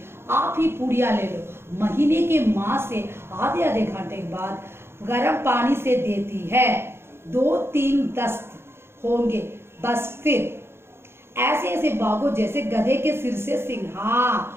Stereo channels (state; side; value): late; left; 0.12 ms